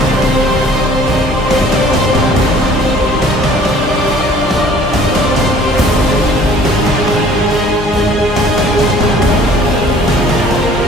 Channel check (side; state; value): both; normal; correlation 0.53